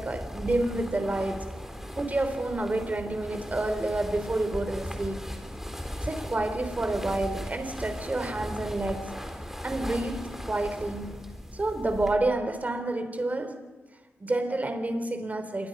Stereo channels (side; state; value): both; normal; correlation 0.91